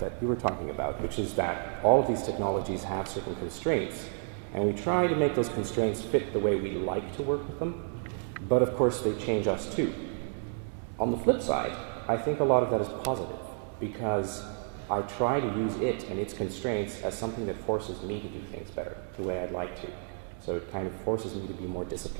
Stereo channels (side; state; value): left; silent; 57 dB below the other